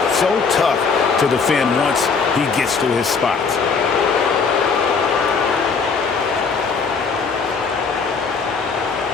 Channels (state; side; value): quieter; right; 5.2 dB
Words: So tough to defend once he gets to his spots.